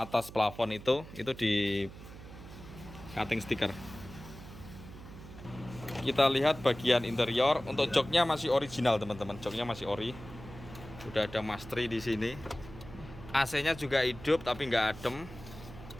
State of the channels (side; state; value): right; noise; hum, 15 dB below the sound